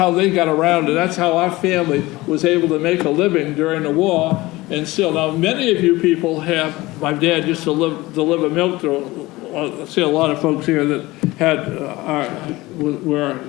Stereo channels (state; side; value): quieter; right; 19.9 dB